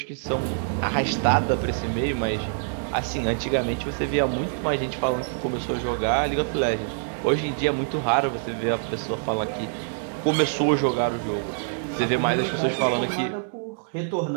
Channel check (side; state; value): left; silent; digital silence